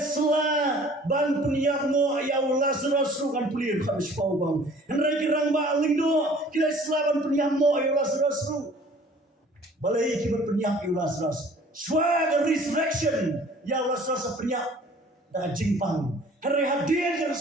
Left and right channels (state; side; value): normal; both; correlation 0.51